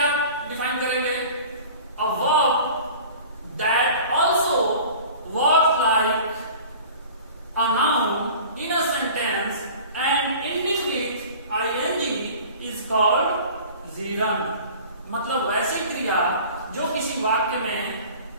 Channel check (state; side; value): inverted; both; correlation -0.43